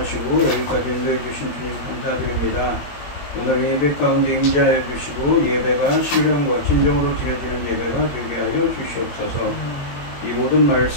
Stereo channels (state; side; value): late; right; 21 ms